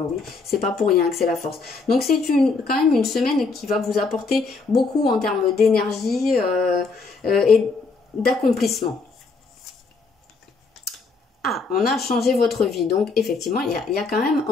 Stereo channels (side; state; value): right; quieter; 4.2 dB